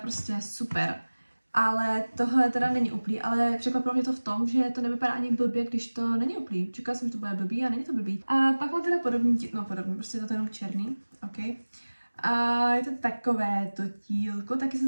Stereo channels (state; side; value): inverted; both; correlation -1.00